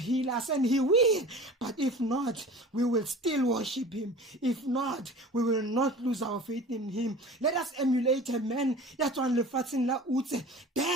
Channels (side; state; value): both; normal; correlation 0.39